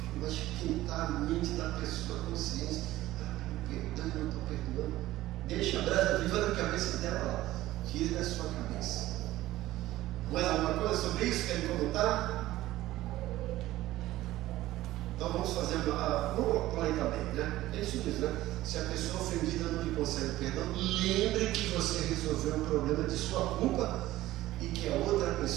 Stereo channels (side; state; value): left; quieter; 15.9 dB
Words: vai esquentar a mente da pessoa, a consciência. Perdão, eu não estou perdoando. Deixa a brasa viva na cabeça dela lá. Tire da sua cabeça. Mais alguma coisa sobre isso? Querem comentar? Então vamos fazer vamos plantar bem, né? É isso mesmo, né? Se a pessoa ofendida não lhe concede perdão, lembre que você resolveu um problema de sua culpa e que a outra